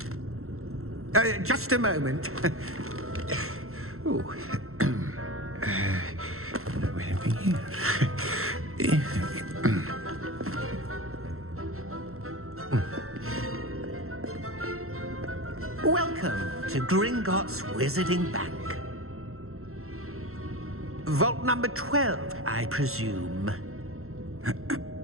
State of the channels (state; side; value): late; left; 0.63 ms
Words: Just a moment. Oh. Anything here? Welcome to Gringotts Wizarding Bank. Vault number 12, I presume.